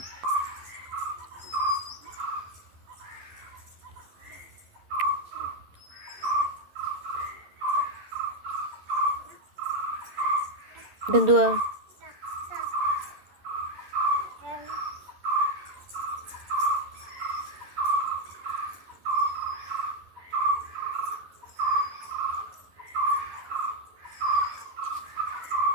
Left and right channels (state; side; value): late; left; 11 ms